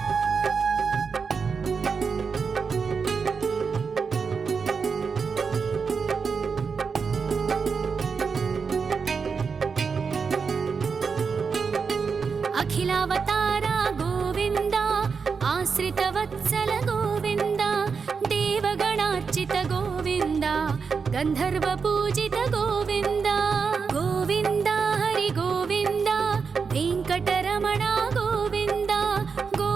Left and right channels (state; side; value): quieter; left; 5.5 dB